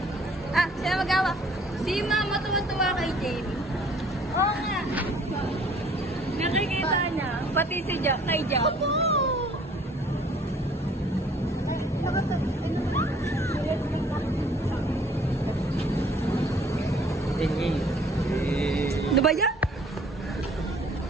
Sino magawa? Si Mama tuwa-tuwa kay Jamie. Oo nga. Nakikita niya. Pati si Jack kay Jack. Opo! Ano ba yan?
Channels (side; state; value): both; normal; correlation 0.56